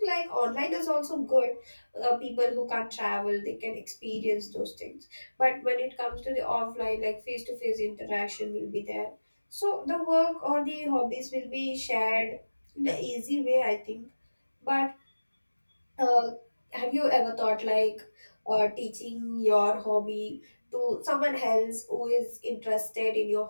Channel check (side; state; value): both; inverted; correlation -1.00